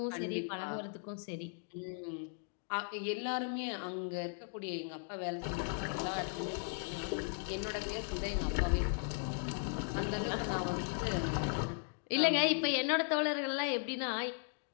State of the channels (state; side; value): silent; right; 53 dB below the other